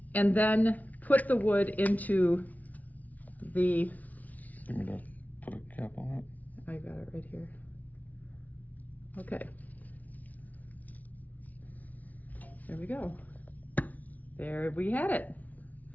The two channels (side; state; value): right; late; 0.074 ms